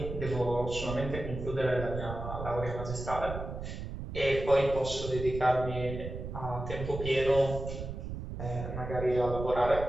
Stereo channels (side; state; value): right; noise; rumble, 7 dB below the sound